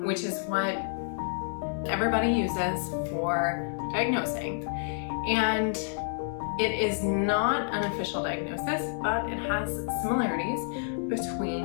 which is what everybody uses for diagnosing. And it is not an official diagnosis, but it has similarities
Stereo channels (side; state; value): right; silent; digital silence